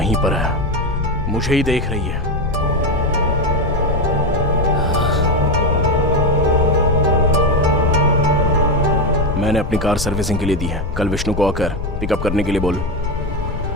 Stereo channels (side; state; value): left; noise; rumble, 6 dB below the sound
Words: पर है, मुझे ही देख रही है। मैंने अपनी कार सर्विसिंग के लिए दी है। कल विष्णु को आकर पिकअप करने के लिए बोल।